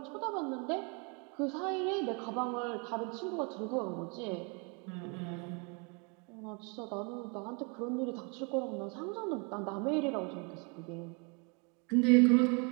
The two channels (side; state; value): left; quieter; 33.7 dB